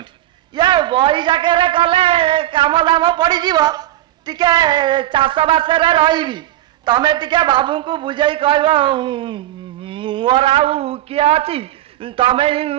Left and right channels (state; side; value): quieter; left; 14.0 dB